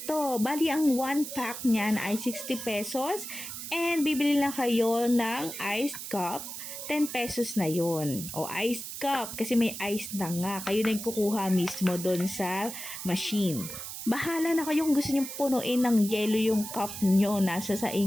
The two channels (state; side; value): noise; right; hiss, 8 dB below the sound